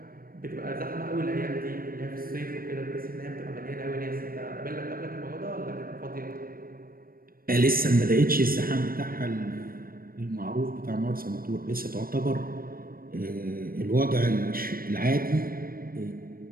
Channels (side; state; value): left; late; 0.42 ms